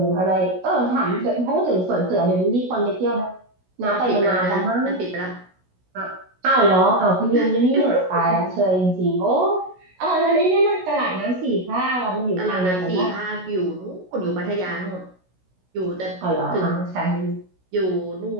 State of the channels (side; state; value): left; late; 16 ms